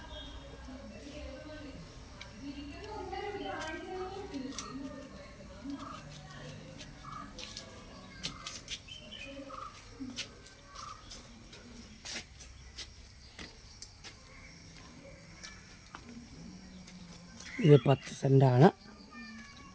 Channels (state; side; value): identical; both; correlation 1.00